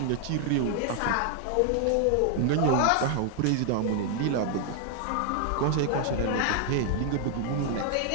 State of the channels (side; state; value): both; different; correlation 0.00